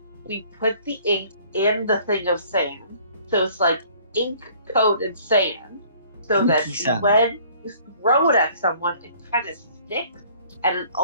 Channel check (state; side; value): inverted; both; correlation -0.55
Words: we put the ink in the thing of sand? So it's like ink coated sand, so that Inky sand. when you throw it at someone, it kind of sticks, and it